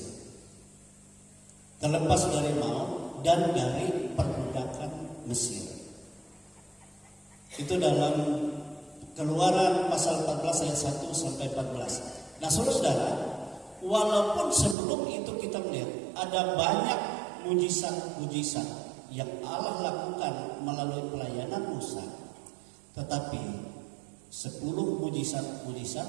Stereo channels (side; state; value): left; drops out; at 14.8 s